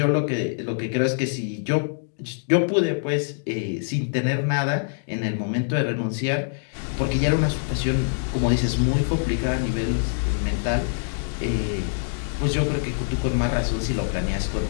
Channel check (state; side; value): silent; right; digital silence